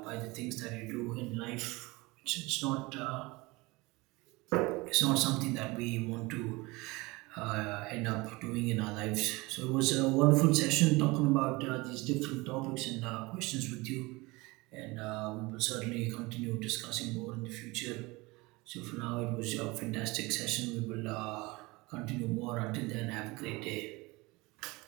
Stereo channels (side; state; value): left; quieter; 23.4 dB